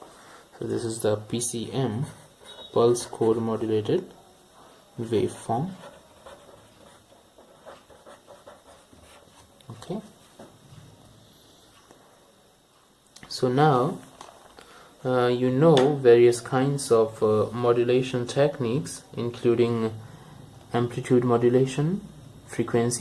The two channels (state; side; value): identical; both; correlation 1.00